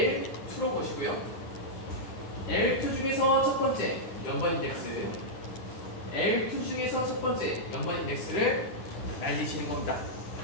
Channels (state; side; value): late; right; 9.8 ms